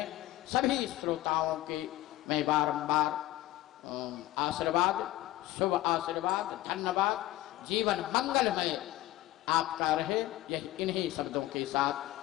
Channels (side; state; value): right; quieter; 16.1 dB